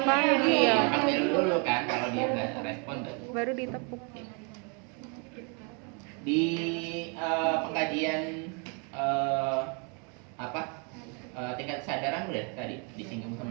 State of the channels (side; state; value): left; quieter; 35.8 dB